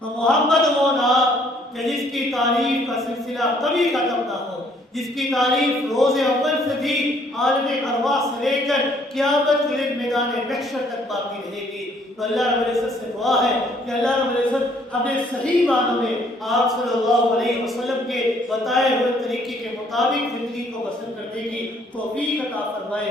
تو محمد وہ نام کہ جس کی تعریف کا سلسلہ کبھی ختم نہ ہو، جس کی تعریف روز اول سے بھی عالم ارواح سے لے کر قیامت کے دن میدان محشر تک باقی رہے گی. تو اللہ رب العزت سے دعا ہے کہ اللہ رب العزت اپنے صحیح معنوں میں آپ صلی اللہ علیہ وسلم کے بتائے ہوئے طریقے کے مطابق زندگی کو بسر کرنے کی توفیق عطا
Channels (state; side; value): normal; both; correlation 0.64